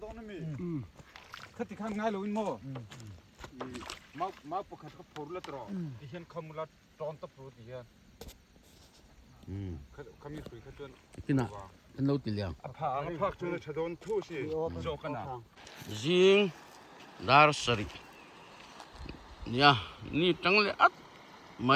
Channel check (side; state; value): both; identical; correlation 1.00